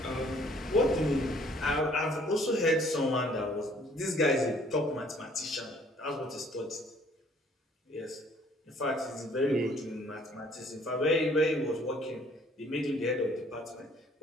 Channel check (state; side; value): normal; both; correlation 0.59